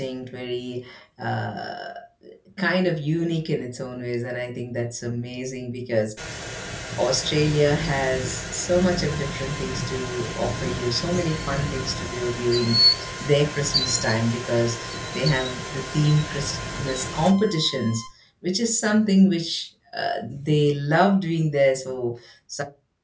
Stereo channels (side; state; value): both; identical; correlation 1.00